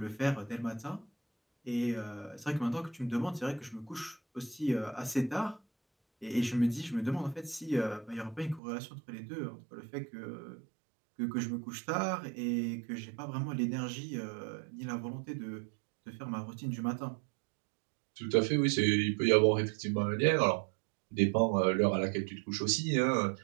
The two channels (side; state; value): left; drops out; at 8.6 s